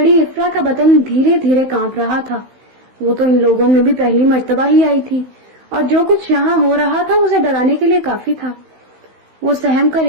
इफ्रा का बदन धीरे धीरे कांप रहा था। वो तो इन लोगों में भी पहली मर्तबा ही आई थी और जो कुछ यहाँ हो रहा था उसे डराने के लिए काफी था। वो सहम कर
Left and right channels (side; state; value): left; late; 16 ms